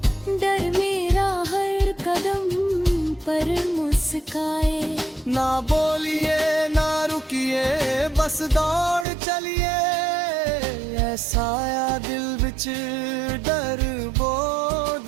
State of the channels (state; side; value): drops out; left; at 9.1 s